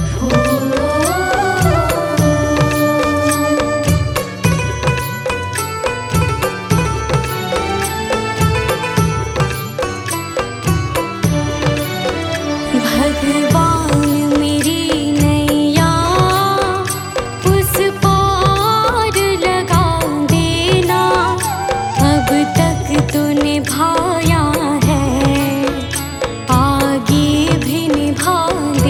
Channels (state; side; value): identical; both; correlation 1.00